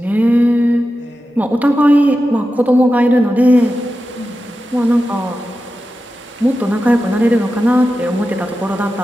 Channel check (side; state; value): both; normal; correlation 0.92